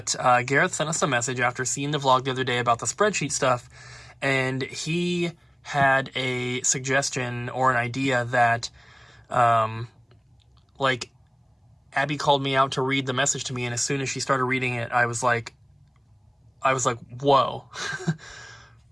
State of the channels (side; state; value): both; identical; correlation 1.00